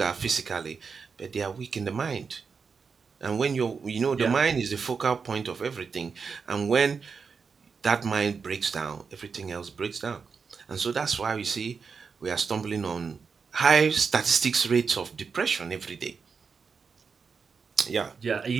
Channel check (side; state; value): left; quieter; 5.5 dB